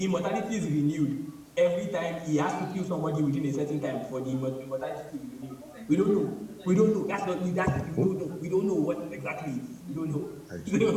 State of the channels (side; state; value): both; identical; correlation 1.00